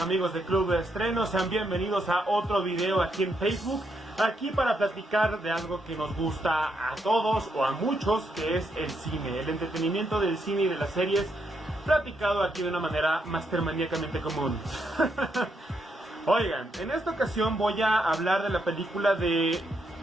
amigos de Club de Estreno? Sean bienvenidos a otro video aquí en Facebook, aquí para platicar de algo que nos gusta a todos o a muchos, que es el cine, el entretenimiento del cine y de las series, platicado aquí de una manera mastermaníacamente común. Oigan, en esta ocasión voy a hablar de la película de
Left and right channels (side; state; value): both; normal; correlation 0.78